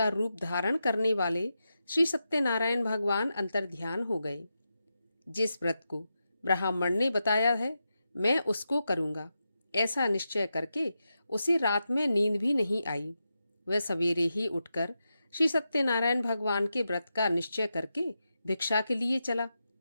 रूप धारण करने वाले श्री सत्यनारायण भगवान अंतर्ध्यान हो गए। जिस व्रत को ब्राह्मण ने बताया है, मैं उसको करूँगा, ऐसा निश्चय करके उसे रात में नींद भी नहीं आई। वह सवेरे ही उठकर श्री सत्यनारायण भगवान के व्रत का निश्चय करके भिक्षा के लिए चला।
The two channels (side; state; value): both; inverted; correlation -0.88